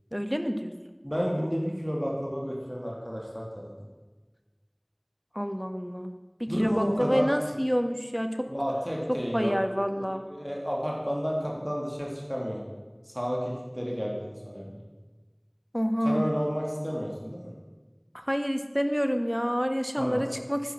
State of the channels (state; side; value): identical; both; correlation 1.00